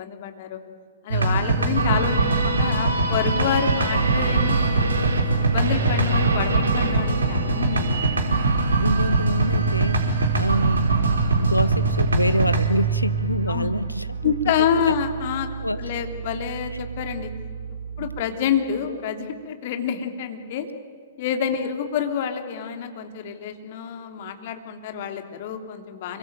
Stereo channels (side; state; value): both; inverted; correlation -0.55